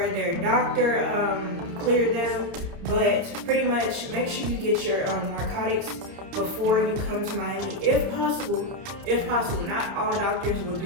their doctor cleared them. But pretty much make sure you get your narcotics before you come to Miami, if possible. If possible, not all doctors will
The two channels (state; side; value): late; left; 30 ms